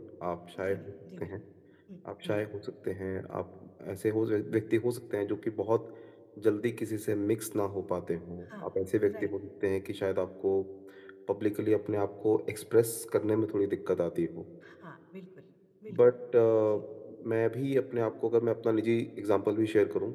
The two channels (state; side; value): identical; both; correlation 1.00